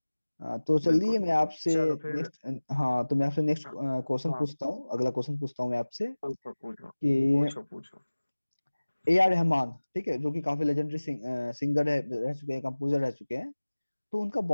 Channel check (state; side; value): inverted; both; correlation -1.00